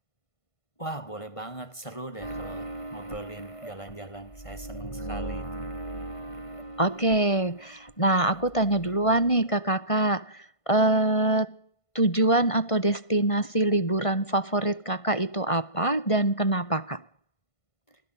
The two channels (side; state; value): right; late; 1.5 ms